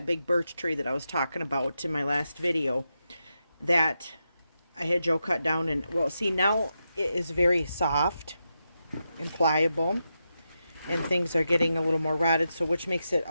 big birch tree that I was talking about in my last video that I had Joe cut down. And well, see, now it is very soft and pliable, and things are getting a little more rotted, so which makes it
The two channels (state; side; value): inverted; both; correlation -0.88